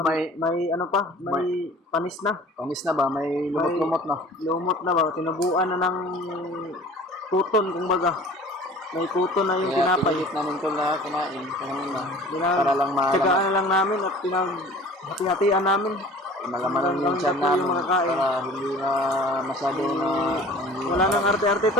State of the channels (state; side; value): normal; both; correlation 0.44